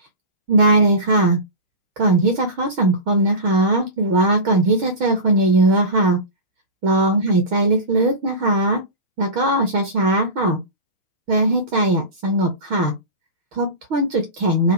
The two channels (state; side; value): late; left; 6.3 ms